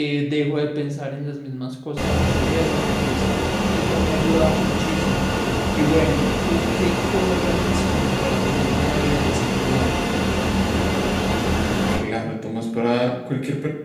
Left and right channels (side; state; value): both; identical; correlation 1.00